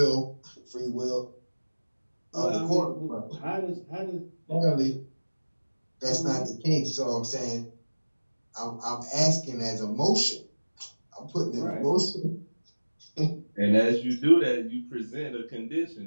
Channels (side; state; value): both; inverted; correlation -1.00